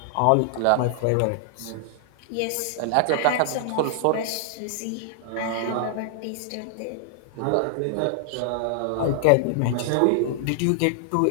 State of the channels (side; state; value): both; different; correlation -0.01